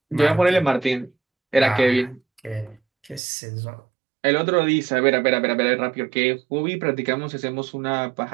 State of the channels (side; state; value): left; drops out; at 3.2 s